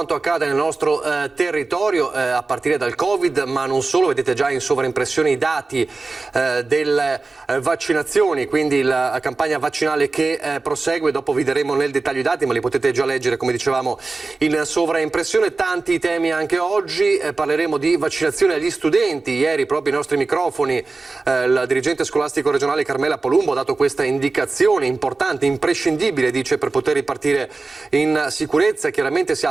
accade nel nostro territorio, a partire dal Covid, ma non solo. Vedete già in sovraimpressione i dati delle vaccinazioni, quindi la campagna vaccinale che prosegue. Dopo vi daremo nel dettaglio i dati, ma li potete già leggere, come dicevamo, in sovraimpressione. Tanti temi anche oggi, parleremo di vaccinazione agli studenti. Ieri proprio i nostri microfoni la dirigente scolastico regionale Carmela Polumbo ha dato questa indicazione importante, imprescindibile, dice, per poter ripartire in sicurezza. Chiaramente si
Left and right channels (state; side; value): quieter; left; 3.7 dB